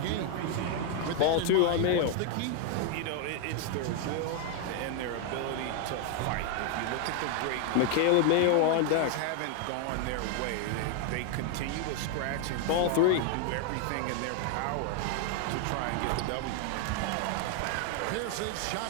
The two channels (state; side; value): different; both; correlation 0.00